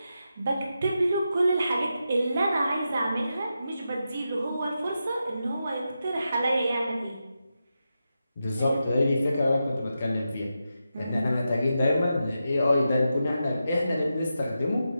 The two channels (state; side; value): inverted; both; correlation -0.88